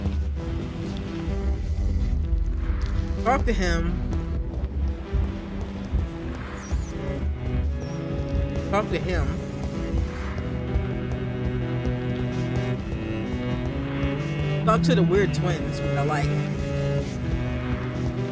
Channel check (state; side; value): identical; both; correlation 1.00